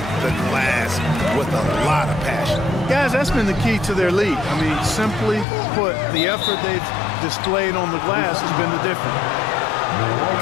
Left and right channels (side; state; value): right; drops out; at 5.5 s